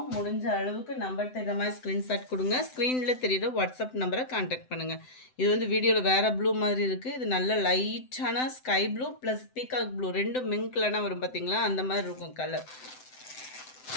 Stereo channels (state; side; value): late; right; 7.8 ms